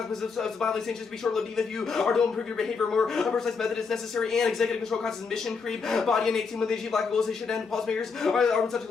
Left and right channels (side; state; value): right; quieter; 5.1 dB